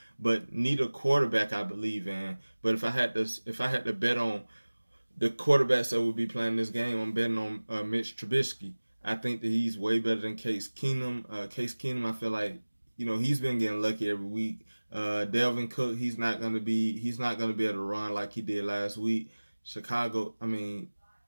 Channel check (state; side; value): inverted; both; correlation -1.00